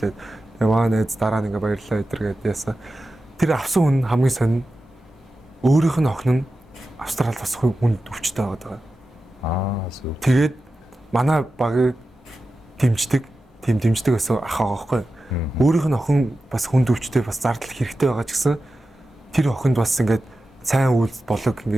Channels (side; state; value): both; normal; correlation 0.93